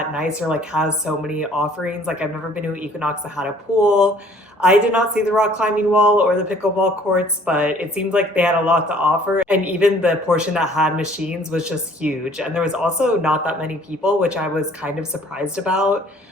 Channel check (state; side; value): normal; both; correlation 0.56